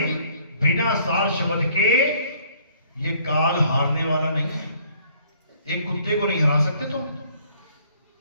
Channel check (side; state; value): both; inverted; correlation -0.60